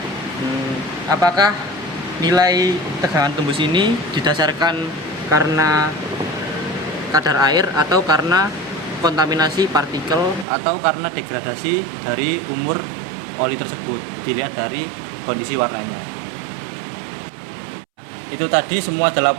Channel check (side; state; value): left; drops out; at 10.5 s